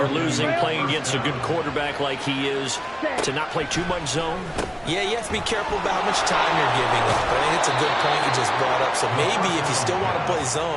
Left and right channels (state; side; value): identical; both; correlation 1.00